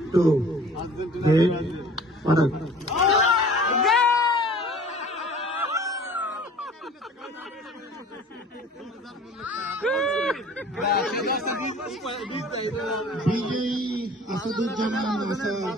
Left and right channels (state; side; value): normal; both; correlation 0.47